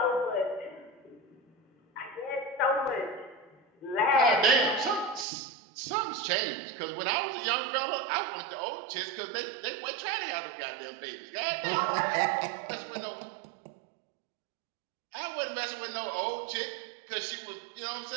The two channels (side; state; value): left; drops out; at 5.2 s